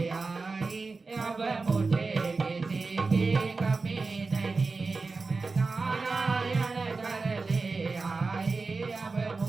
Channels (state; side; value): quieter; left; 4.0 dB